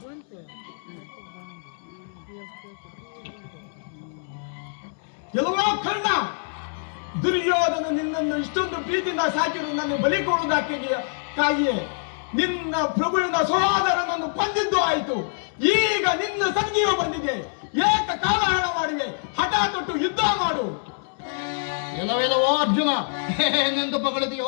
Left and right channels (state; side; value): silent; right; 62 dB below the other